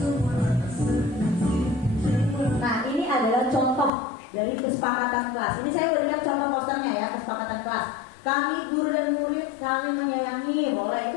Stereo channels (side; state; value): right; drops out; at 3.9 s